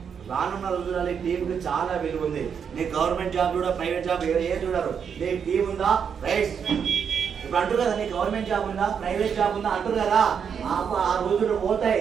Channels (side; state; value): left; quieter; 7.2 dB